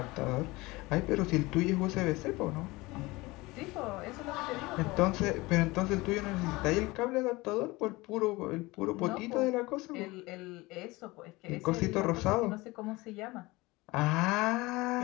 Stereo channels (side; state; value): right; quieter; 21.8 dB